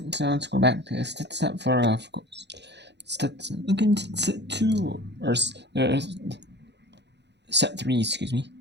so let's go back to set 4, of course. Stetson looking to set 2, or set 3, excuse me.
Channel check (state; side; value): late; left; 0.50 ms